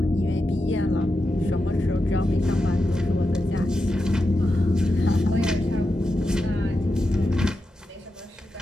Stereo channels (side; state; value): both; normal; correlation 0.89